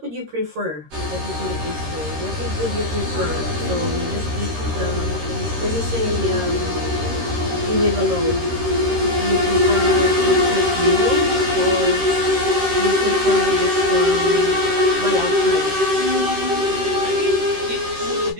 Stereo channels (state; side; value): late; left; 13 ms